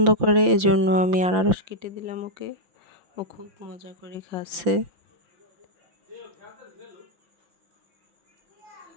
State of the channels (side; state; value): left; late; 5.8 ms